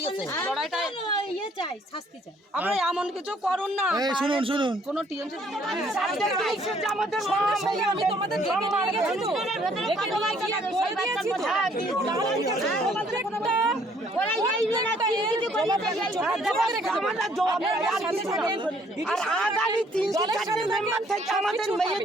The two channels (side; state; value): both; normal; correlation 0.63